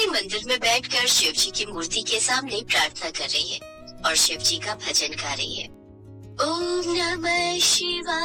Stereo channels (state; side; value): identical; both; correlation 1.00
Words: मंदिर में बैठकर शिव जी की मूर्ति के सामने प्रार्थना कर रही है और शिव जी का भजन गा रही है। ओम नमः